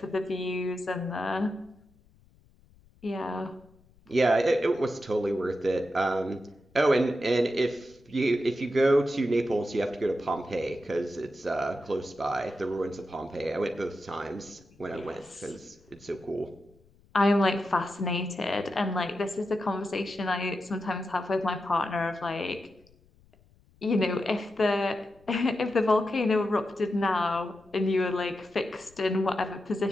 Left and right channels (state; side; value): noise; left; rumble, 30 dB below the sound